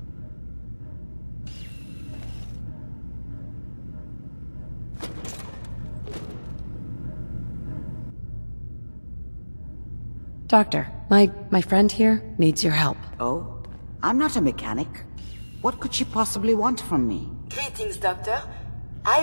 Doctor, my friend here needs your help. Oh? I'm not a mechanic. What could she possibly want from me? Greetings, Doctor. I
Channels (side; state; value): both; inverted; correlation -1.00